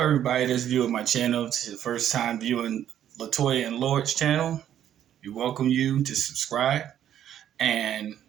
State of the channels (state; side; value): quieter; left; 10.6 dB